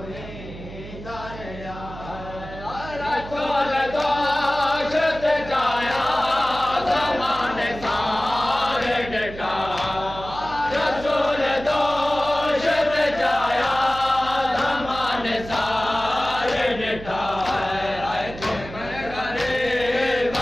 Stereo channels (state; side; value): noise; right; hum, 13 dB below the sound